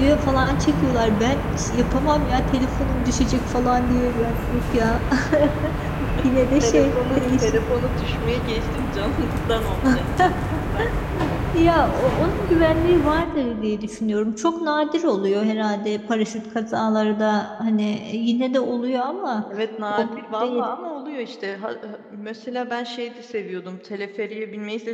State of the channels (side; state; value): both; identical; correlation 1.00